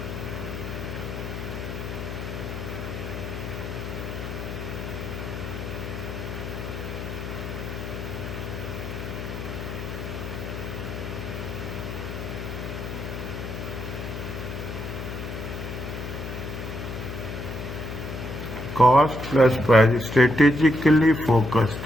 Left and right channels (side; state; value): left; noise; hum, 6 dB below the sound